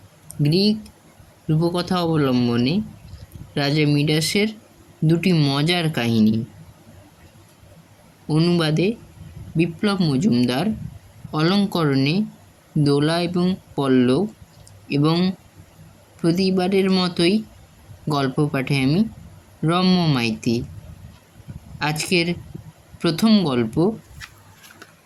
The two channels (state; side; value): identical; both; correlation 1.00